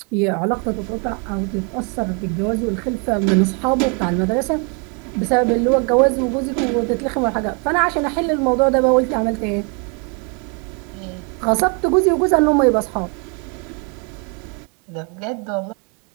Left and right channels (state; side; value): quieter; left; 35.4 dB